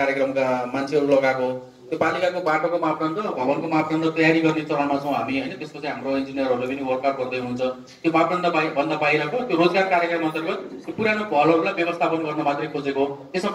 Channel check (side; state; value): both; identical; correlation 1.00